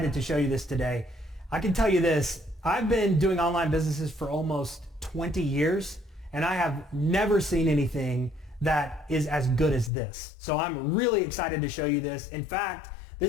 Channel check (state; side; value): drops out; right; at 9.9 s